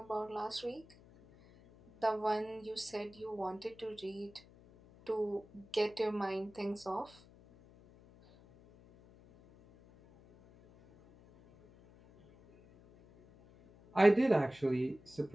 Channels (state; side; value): noise; left; hum, 24 dB below the sound